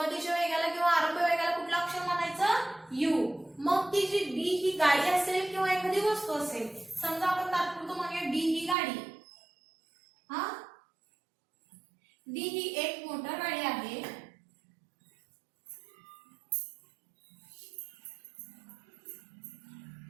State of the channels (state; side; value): drops out; left; at 8.8 s